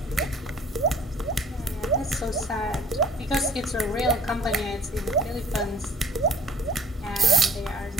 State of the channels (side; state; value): both; normal; correlation 0.54